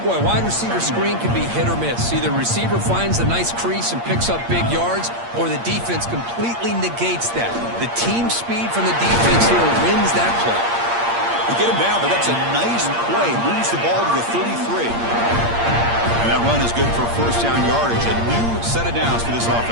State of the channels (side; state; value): left; late; 8.6 ms